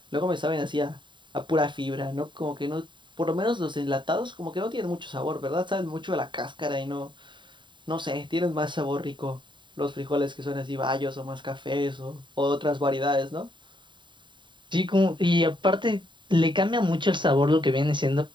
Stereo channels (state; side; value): late; left; 0.23 ms